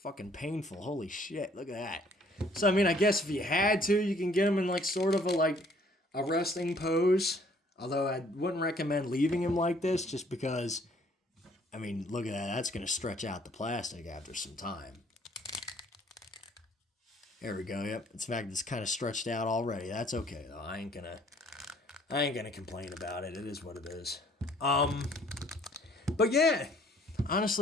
painful. Holy shit, look at that. So, I mean, I guess if you had to, you can get them in like sort of a resting pose. Although I wouldn't recommend leaving him like this just because, I mean, look at that. That's going to stretch out the plastic after some time. There we go. Yep. In fact, it's kind of stretched out already. That's okay though. I ain't gonna complain about it. It is what it is. But yeah,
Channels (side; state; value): both; normal; correlation 0.60